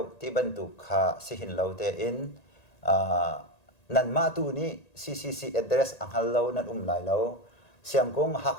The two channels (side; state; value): right; late; 1.9 ms